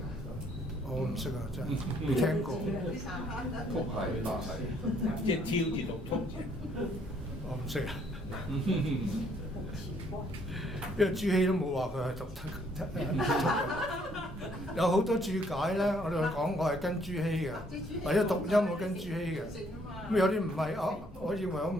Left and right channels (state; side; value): normal; both; correlation 0.66